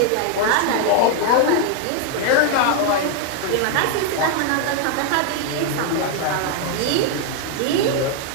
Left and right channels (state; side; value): different; both; correlation 0.00